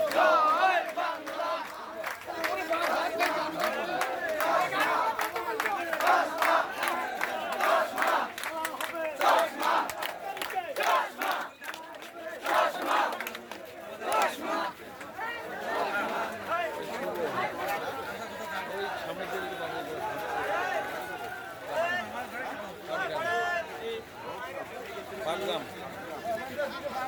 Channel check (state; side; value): identical; both; correlation 1.00